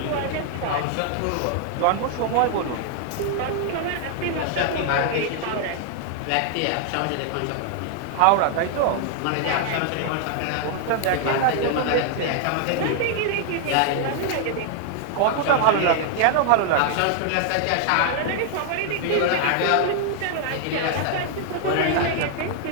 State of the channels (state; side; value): different; both; correlation 0.00